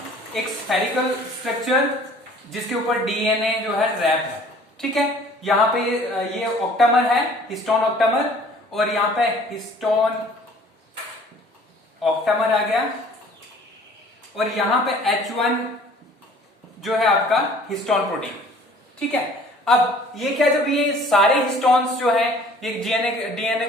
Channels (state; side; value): normal; both; correlation 0.52